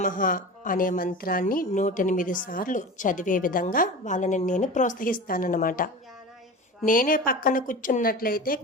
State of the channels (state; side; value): normal; both; correlation 0.31